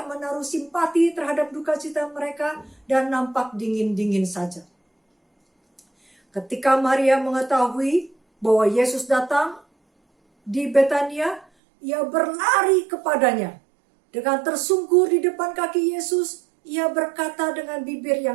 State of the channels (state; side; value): drops out; left; at 11.5 s